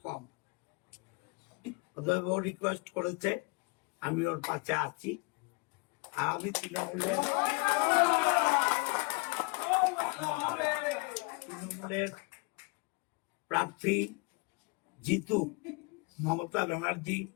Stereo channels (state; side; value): quieter; right; 29.9 dB